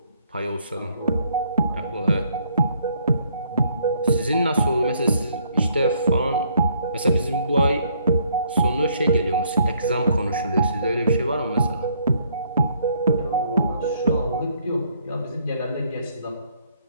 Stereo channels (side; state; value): both; inverted; correlation -0.67